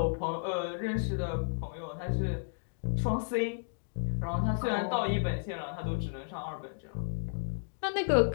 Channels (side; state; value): right; silent; digital silence